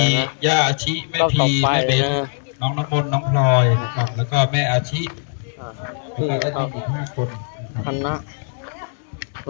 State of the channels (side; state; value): right; silent; 65 dB below the other